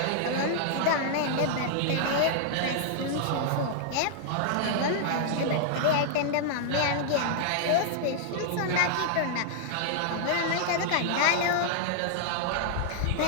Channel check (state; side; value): different; both; correlation -0.01